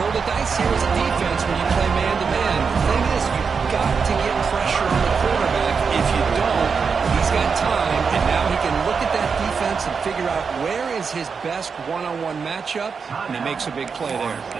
the dice here as a defense when you play man-to-man. The thing is, you've got to get pressure on the quarterback. If you don't, he's got time, and now he can look at that defense and figure out where is his best one-on-one matchup, and he makes a big play there.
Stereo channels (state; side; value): quieter; left; 5.6 dB